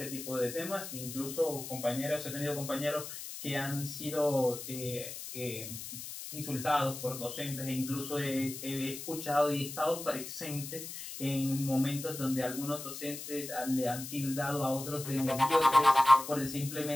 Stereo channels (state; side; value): noise; left; hiss, 9 dB below the sound